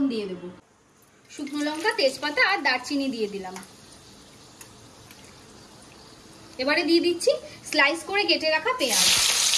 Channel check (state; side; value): identical; both; correlation 1.00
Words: দিয়ে দেব। শুকনো লঙ্কা, তেজপাতা আর দারচিনি দিয়ে দিলাম। এবারে দিয়ে দিচ্ছি স্লাইস করে কেটে রাখা পেঁয়াজ।